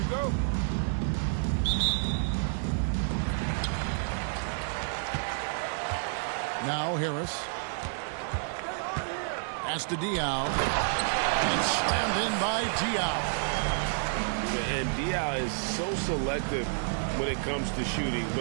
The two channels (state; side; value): silent; left; digital silence